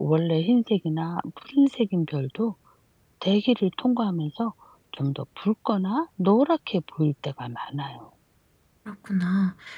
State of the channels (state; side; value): identical; both; correlation 1.00